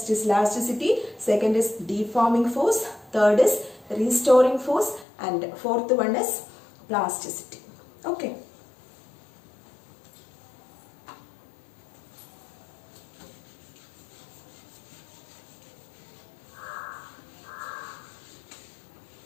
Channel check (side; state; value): right; drops out; at 5.1 s